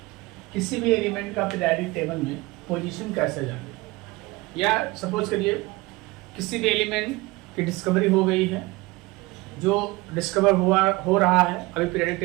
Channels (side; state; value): left; quieter; 22.3 dB